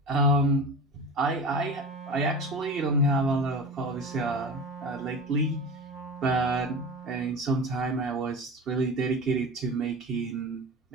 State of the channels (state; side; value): normal; both; correlation 0.31